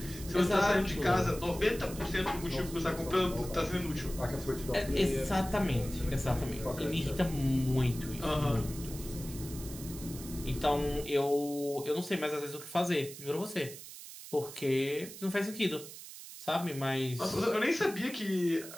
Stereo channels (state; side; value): noise; right; hiss, 13 dB below the sound